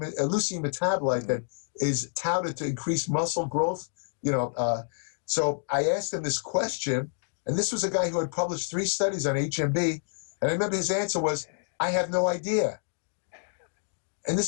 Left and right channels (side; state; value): right; silent; digital silence